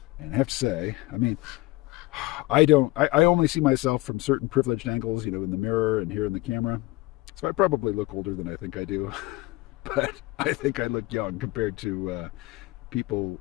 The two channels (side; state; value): right; quieter; 20.8 dB